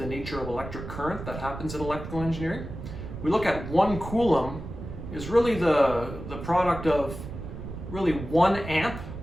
nature of electric current that happens in electrical engineering, we look at 1 Coulomb is really the product of really 1 amp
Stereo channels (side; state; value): right; noise; rumble, 9 dB below the sound